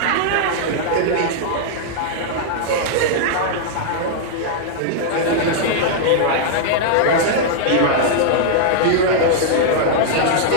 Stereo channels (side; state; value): both; different; correlation -0.01